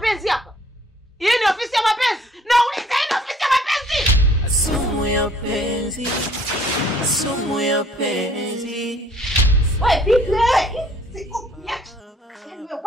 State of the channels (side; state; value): both; normal; correlation 0.58